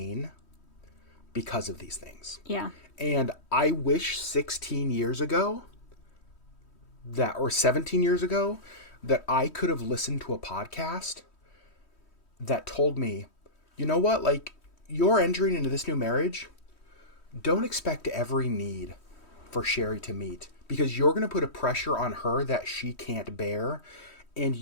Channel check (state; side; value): late; right; 3.1 ms